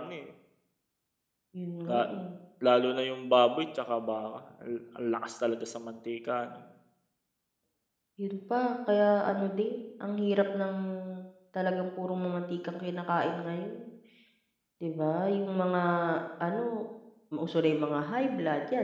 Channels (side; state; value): both; identical; correlation 1.00